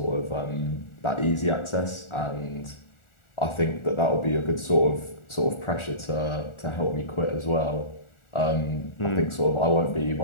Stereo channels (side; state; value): right; late; 1.4 ms